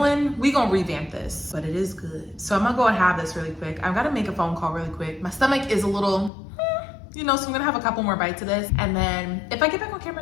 we gonna revamp this. But it is good. So I'm gonna go and have this really quick. I've gotta make a phone call really quick. My stomach is a little, you know, so I'm gonna have a couple more bites of this. And then if I get back on camera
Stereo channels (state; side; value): drops out; right; at 6.3 s